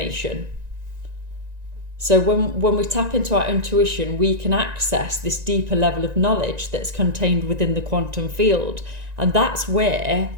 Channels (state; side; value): late; left; 1.9 ms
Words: So when we tap into our intuition, we can access this deeper level of knowledge that's contained within the quantum field. And that's where